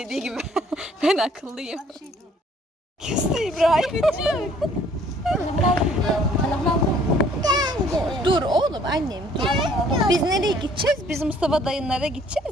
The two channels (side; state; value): both; normal; correlation 0.59